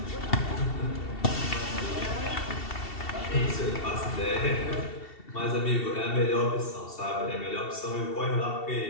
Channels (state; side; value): late; right; 2.7 ms